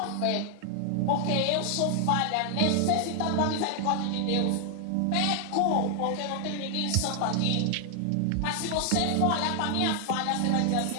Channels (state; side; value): different; both; correlation 0.00